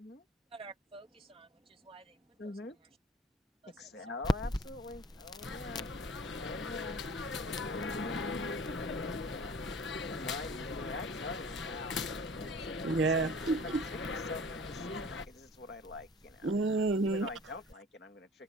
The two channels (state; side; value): normal; both; correlation 0.45